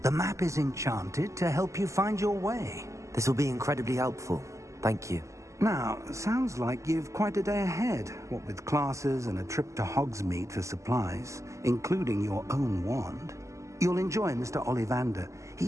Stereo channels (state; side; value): late; left; 0.15 ms